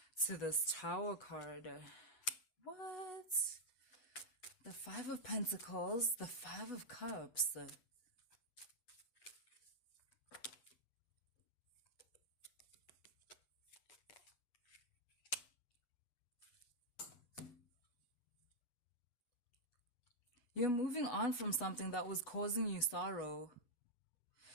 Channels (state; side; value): late; right; 8.1 ms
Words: to this Tower card. What? The Five of Pentacles, the Five of Cups. You're moving on from something that was causing you sorrow.